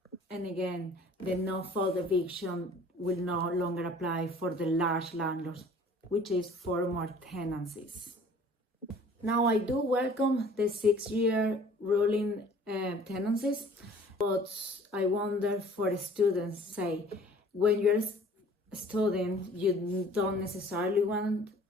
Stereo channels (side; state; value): both; normal; correlation 0.50